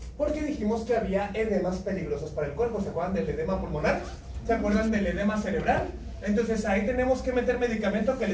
Porque dijimos que había edemas peligrosos para el cuerpo. ¿Se acuerdan del edema pulmonar? ¿Se acuerdan del edema cerebral? Entonces ahí tenemos que meter medicamento que le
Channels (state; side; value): identical; both; correlation 1.00